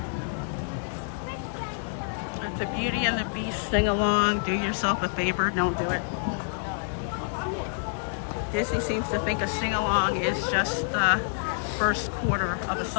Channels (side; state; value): right; silent; digital silence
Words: That's a Beauty and the Beast sing-along. Do yourself a favor, don't do it. Disney seems to think a sing-along is just the first quarter of a